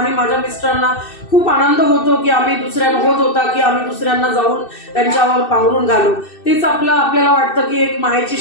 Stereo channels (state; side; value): late; right; 2.6 ms